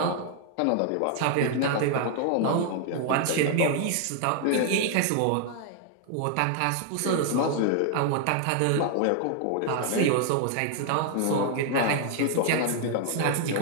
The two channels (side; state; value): both; different; correlation 0.00